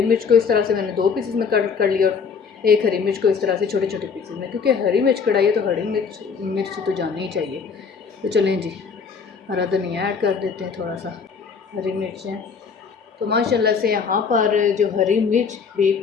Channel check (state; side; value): quieter; right; 5.8 dB